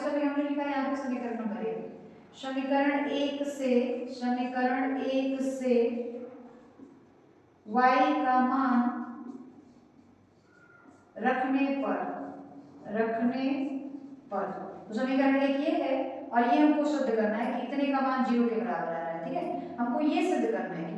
हमने लिखा है, यहाँ पे समीकरण नंबर 1, समीकरण 1 से y का मान रखने पर तो समीकरण 1 ये है और ये हमको सिद्ध करना है कि इतने का मान 0 के बराबर आ रहा है, ठीक है। हमको ये सिद्ध करना है कि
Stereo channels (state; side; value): identical; both; correlation 1.00